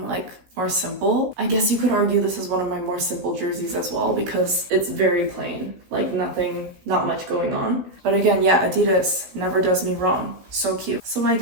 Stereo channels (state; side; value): late; left; 16 ms